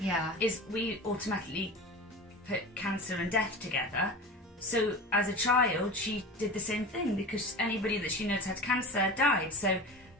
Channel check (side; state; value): both; normal; correlation 0.32